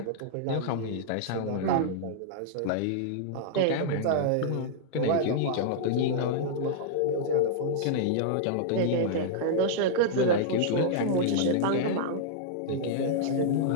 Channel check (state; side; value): different; both; correlation -0.02